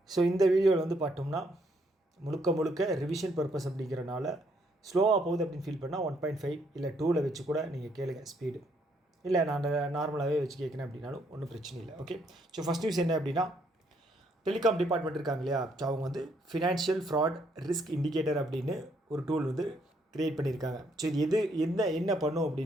ஸோ இந்த வீடியோவில் வந்து பார்த்தோம்னா முழுக்க ரிவிஷன் பர்பஸ் அப்படிங்கிறனால ஸ்லோவாக போகுது அப்படின்னு ஃபீல் பண்ணால் 1.5 இல்லை 2ல் வச்சு கூட நீங்கள் கேளுங்க ஸ்பீடு. இல்லை நான் நார்மலாகவே வச்சு கேட்குறேன் அப்படின்னாலும் ஒன்றும் பிரச்சனை இல்லை. ஓகே, ஸோ ஃபஸ்ட் நியூஸ் என்ன அப்படின்னா, டெலிகாம் டிபார்ட்மெண்ட் இருக்காங்க இல்லையா, ஸோ அவங்க வந்து ஃபினான்ஷியல் ஃப்ராட் ரிஸ்க் இண்டிகேட்டர் அப்படின்னு ஒரு டூல் வந்து க்ரியேட் பண்ணியிருக்காங்க. ஸோ இது என்ன பண்ணும்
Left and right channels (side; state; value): both; normal; correlation 0.71